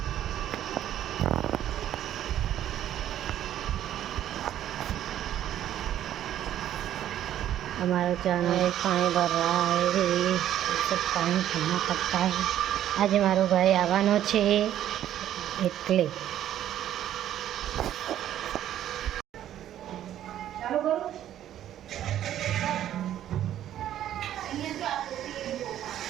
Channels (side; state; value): left; quieter; 11.6 dB